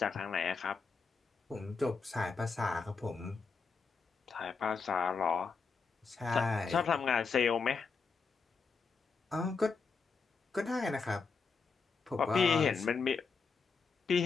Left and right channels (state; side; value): quieter; right; 5.0 dB